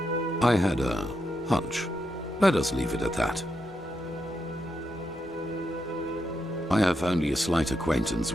I had a hunch. Let us leave it at that. I have only a slight acquaintance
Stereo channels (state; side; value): normal; both; correlation 0.83